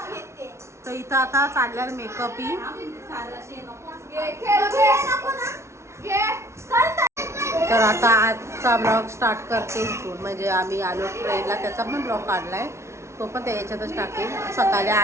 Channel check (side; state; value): left; late; 0.13 ms